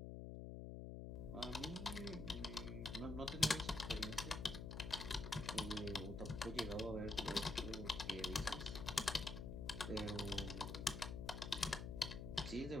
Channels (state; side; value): noise; left; hum, 6 dB below the sound